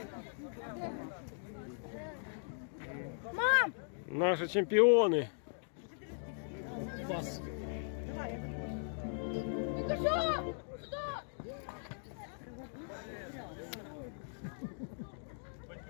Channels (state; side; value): silent; right; digital silence